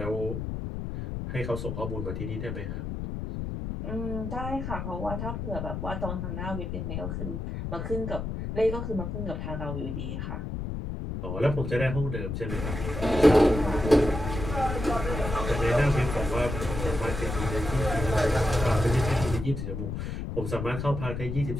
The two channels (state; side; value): noise; left; rumble, 5 dB below the sound